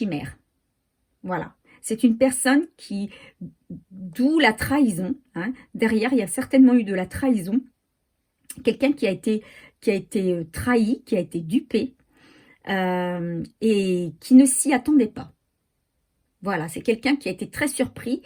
Voilà. C'est une personne d'où la trahison, hein. Derrière, il y a certainement eu de la trahison. Quelqu'un qui a été trahi, qui a été dupé et qui ne s'y attendait pas. Voilà, c'est quelqu'un qui a été très surpris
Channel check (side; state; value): both; identical; correlation 1.00